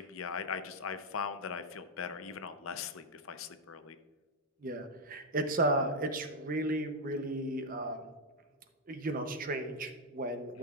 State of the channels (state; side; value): normal; both; correlation 0.00